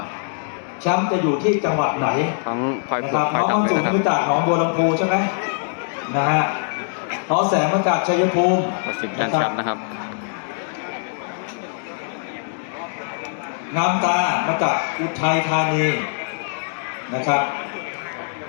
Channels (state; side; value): silent; right; 64 dB below the other